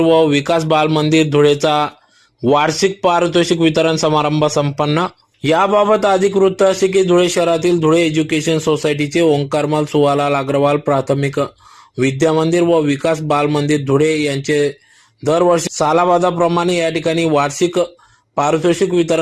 विकास बाल मंदिर धुळेचा वार्षिक पारितोषिक वितरण समारंभ संपन्न। याबाबत अधिक वृत्त असे की धुळे शहरातील धुळे एज्युकेशन सोसायटीचे ओंकारमल सुवालाल अग्रवाल प्राथमिक विद्या मंदिर व विकास बाल मंदिर धुळे यांचे दरवर्षी सालाबादाप्रमाणे या ठिकाणी वार्षिक पारितोषिक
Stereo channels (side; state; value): both; identical; correlation 1.00